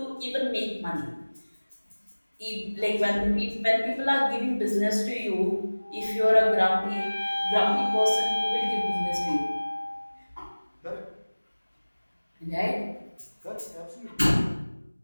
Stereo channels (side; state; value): both; inverted; correlation -1.00